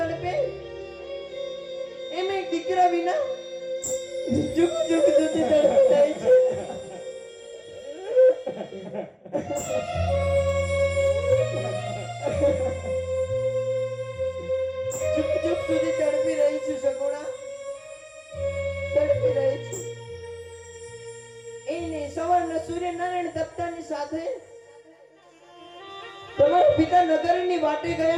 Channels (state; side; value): identical; both; correlation 1.00